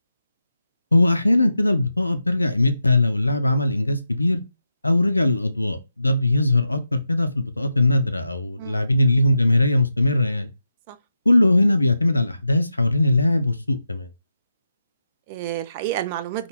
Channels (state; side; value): inverted; both; correlation -0.88